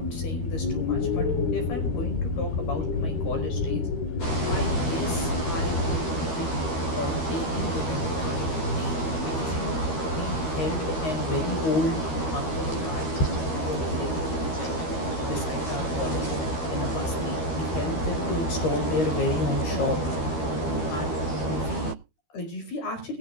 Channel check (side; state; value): right; late; 13 ms